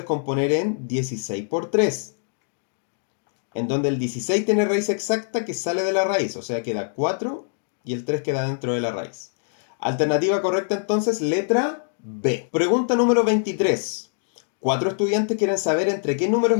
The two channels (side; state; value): right; silent; digital silence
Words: en 16 por 3, en donde el 16 tiene raíz exacta que sale de la raíz, o sea queda 4 y el 3 queda dentro de la raíz. Alternativa correcta entonces, letra B. Pregunta número 23. 4 estudiantes quieren saber entre qué números